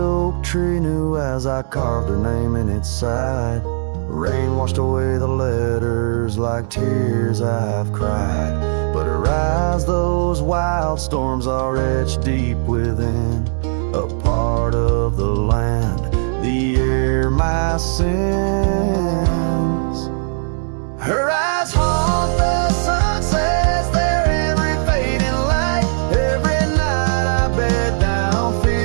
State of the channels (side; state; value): left; silent; 65 dB below the other